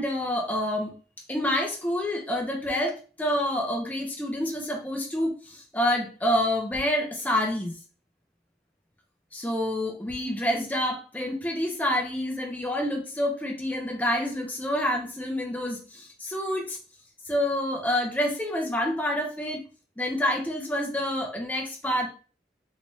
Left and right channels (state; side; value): normal; both; correlation 0.59